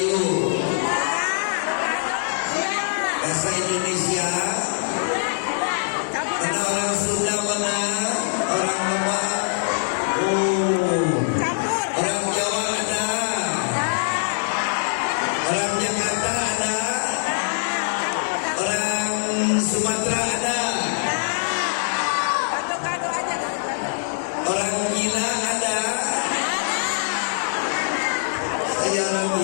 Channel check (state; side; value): silent; right; digital silence